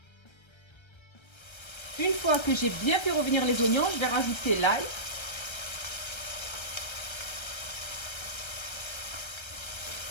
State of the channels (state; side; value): late; right; 1.3 ms